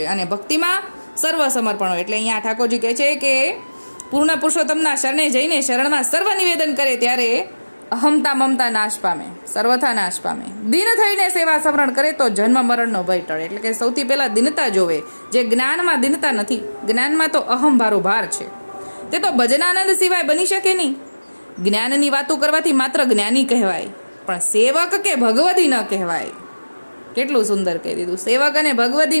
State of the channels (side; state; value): both; inverted; correlation -1.00